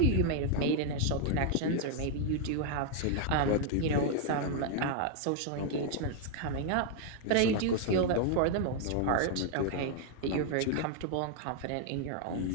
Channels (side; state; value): both; different; correlation 0.00